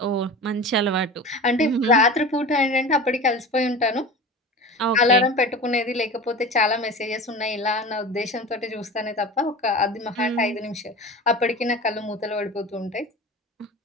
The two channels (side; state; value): both; normal; correlation 0.33